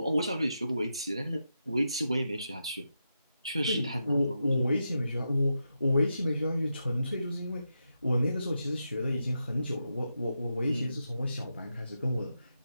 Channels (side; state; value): both; inverted; correlation -0.87